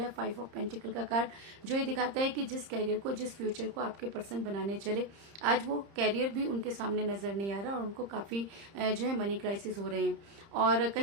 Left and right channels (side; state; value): left; late; 30 ms